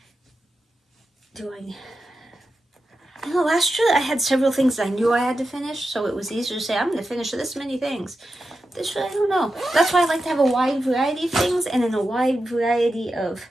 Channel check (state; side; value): normal; both; correlation 0.90